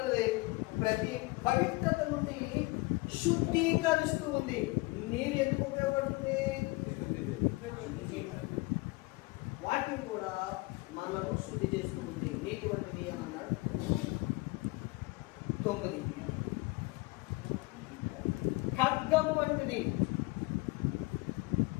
ప్రతి పవిత్రత నుండి శుద్ధీకరిస్తూ ఉంది. నీరు ఎందుకు ఉపయోగపడుతుంది? వాక్యం కూడా మనను శుద్ధి చేస్తుంది. నీటి వంటిది అని అన్నాడు. 9 ఖడ్గం వంటిది.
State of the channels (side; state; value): right; quieter; 23.9 dB